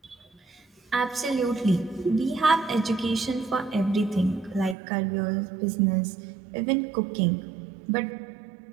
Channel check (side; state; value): left; drops out; at 4.8 s